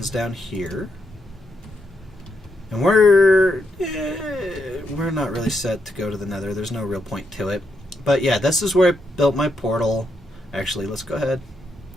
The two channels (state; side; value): normal; both; correlation 0.80